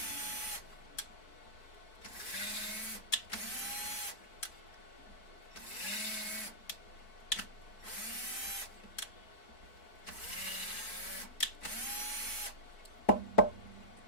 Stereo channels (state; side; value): late; right; 4.6 ms